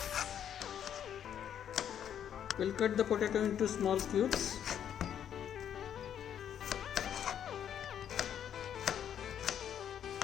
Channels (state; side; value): quieter; right; 9.3 dB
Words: We'll cut the potato into small cubes.